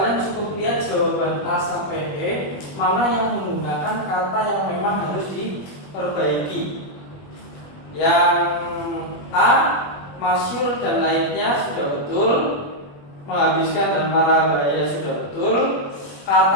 cukup lihat jawaban A sampai E mana yang menggunakan kata yang memang harus diperbaiki. Yang A, masyhur dan lainnya sudah betul, menghabiskan dan marah bahaya sudah betul.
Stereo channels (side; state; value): right; late; 21 ms